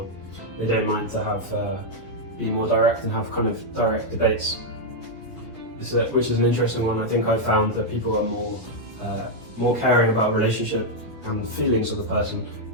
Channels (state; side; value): normal; both; correlation -0.02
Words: they don't mind to be more direct and have kind of direct debates. Which is an interesting one. I think I've found that people are more caring about relationship and feelings of the person.